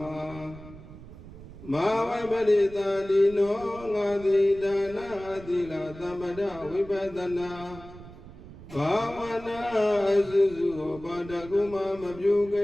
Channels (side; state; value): right; noise; rumble, 16 dB below the sound